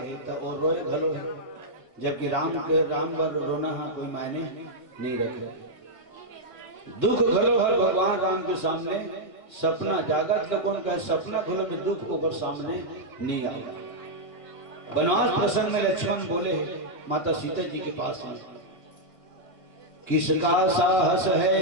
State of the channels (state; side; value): late; right; 1.5 ms